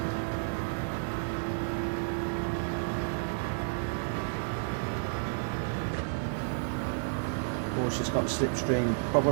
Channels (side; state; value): left; silent; digital silence